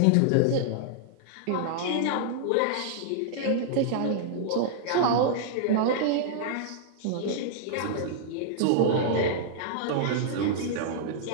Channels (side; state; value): both; different; correlation -0.01